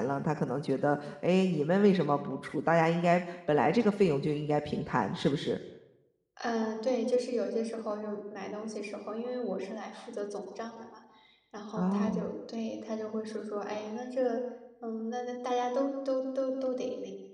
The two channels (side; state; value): both; identical; correlation 1.00